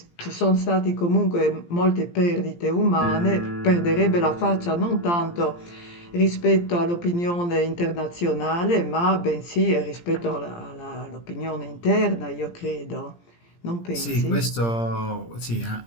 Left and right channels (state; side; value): late; right; 17 ms